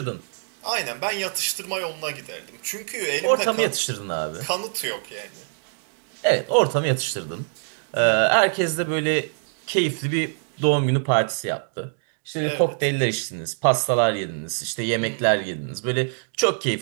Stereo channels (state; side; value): silent; left; digital silence